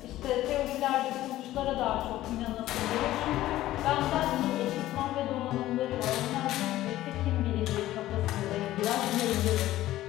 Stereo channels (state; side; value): quieter; right; 15.0 dB